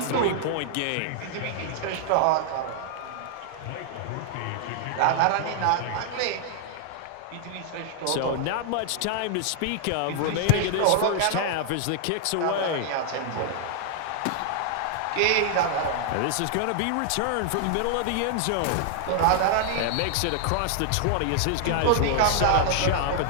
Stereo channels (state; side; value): different; both; correlation 0.00